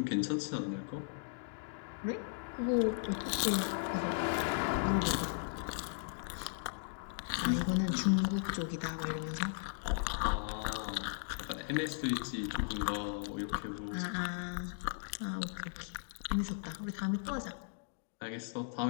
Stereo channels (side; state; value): right; silent; digital silence